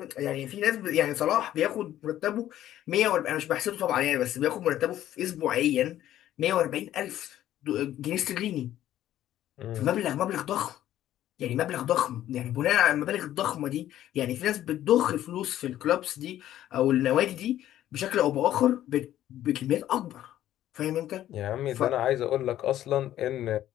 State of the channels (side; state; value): right; quieter; 12.6 dB